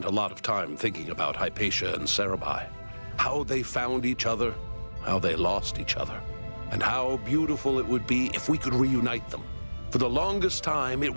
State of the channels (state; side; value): inverted; both; correlation -1.00